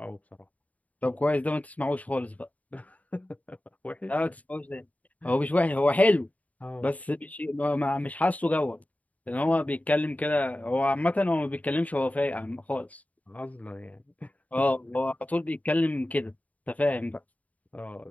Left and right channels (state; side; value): late; right; 0.071 ms